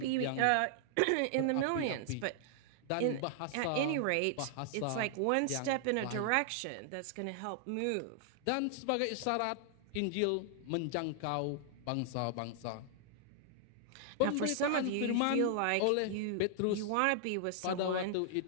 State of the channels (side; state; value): both; different; correlation 0.00